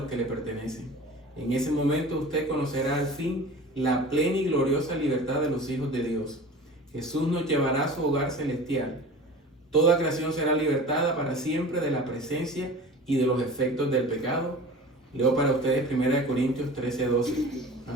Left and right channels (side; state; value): both; normal; correlation 0.38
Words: que le pertenecen. En ese momento usted conocerá al fin la plena y gloriosa libertad de los hijos de Dios. Jesús nos llevará a su hogar celestial. Toda creación será libertada para siempre de la presencia y de los efectos del pecado. Leo para ustedes 1 Corintios 13:12.